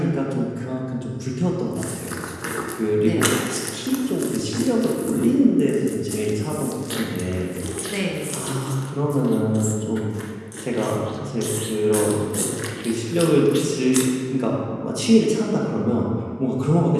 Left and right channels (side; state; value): both; identical; correlation 1.00